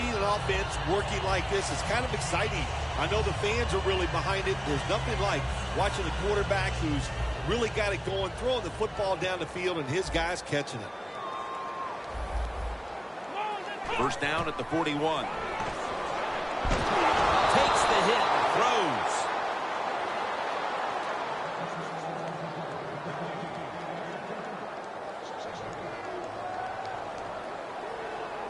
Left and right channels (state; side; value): identical; both; correlation 1.00